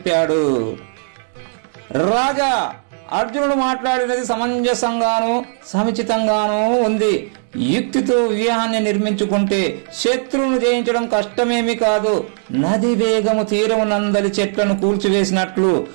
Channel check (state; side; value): silent; left; digital silence